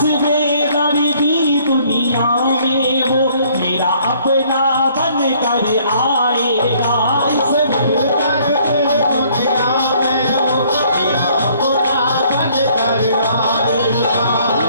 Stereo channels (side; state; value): both; inverted; correlation -0.61